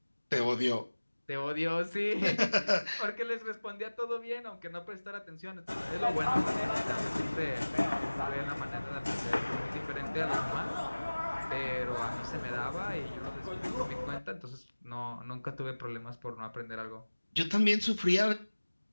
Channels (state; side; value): inverted; both; correlation -1.00